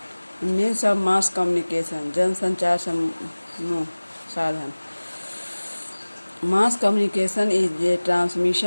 मीन्स ऑफ मास कम्युनिकेशन, जनसंचार समूह साधन। Mass communication is a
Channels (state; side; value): inverted; both; correlation -1.00